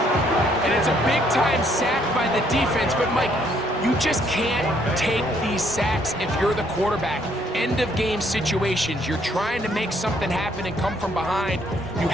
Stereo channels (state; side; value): normal; both; correlation 0.67